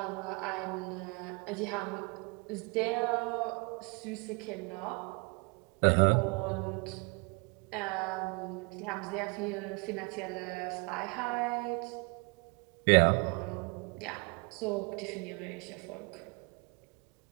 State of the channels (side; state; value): left; quieter; 30.4 dB